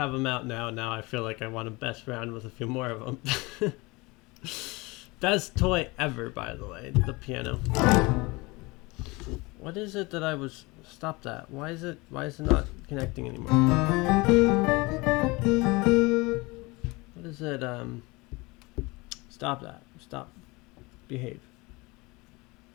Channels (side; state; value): right; quieter; 24.3 dB